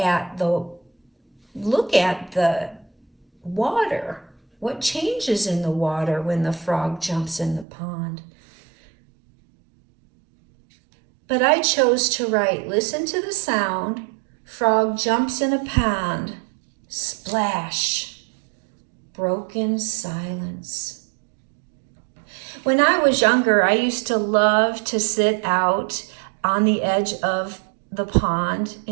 the water. What changes in the water when the frog jumps in the pond? But I chose to write, listen to the sound. Frog jumps in a pond. Splash. Broken silence. When I was younger, I used to love to sit out on the edge of the pond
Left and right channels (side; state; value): left; drops out; at 7.7 s